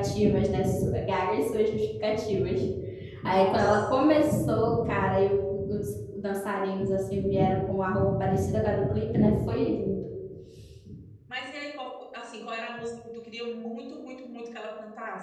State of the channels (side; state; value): both; identical; correlation 1.00